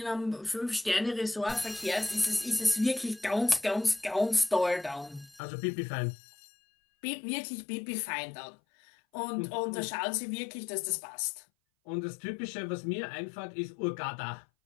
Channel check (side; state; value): right; drops out; at 5.4 s